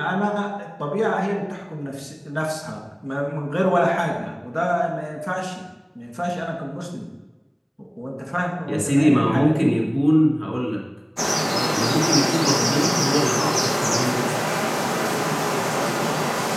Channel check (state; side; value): identical; both; correlation 1.00